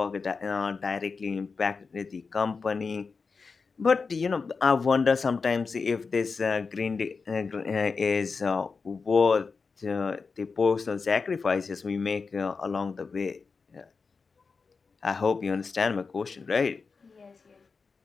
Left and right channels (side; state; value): right; quieter; 4.8 dB